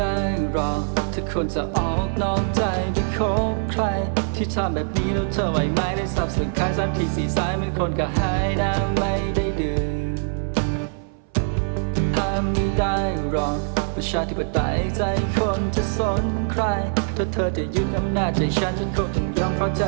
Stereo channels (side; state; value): left; silent; 59 dB below the other